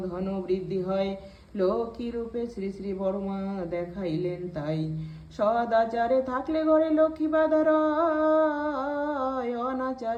ধন বৃদ্ধি হয়, লক্ষ্মী রূপে শ্রী শ্রী বড়মা দেখাইলেন তাই। সদাচারে থাকলে ঘরে লক্ষ্মী বাধা রয়,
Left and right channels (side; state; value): both; identical; correlation 1.00